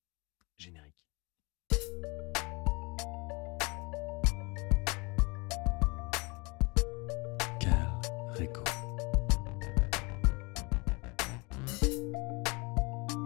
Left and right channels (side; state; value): right; quieter; 28.3 dB